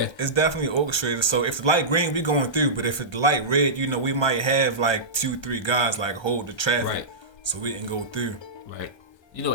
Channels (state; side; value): late; right; 1.3 ms